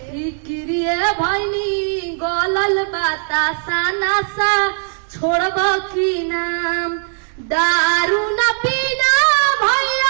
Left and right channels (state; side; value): silent; left; 60 dB below the other